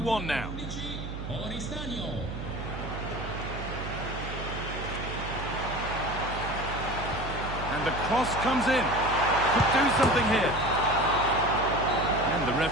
now. And the cross comes in. Could do something here. And the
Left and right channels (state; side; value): noise; right; hum, 7 dB below the sound